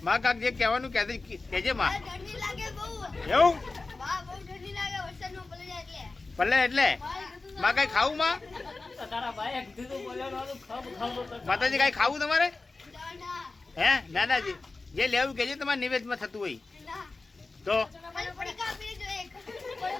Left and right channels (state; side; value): quieter; right; 3.6 dB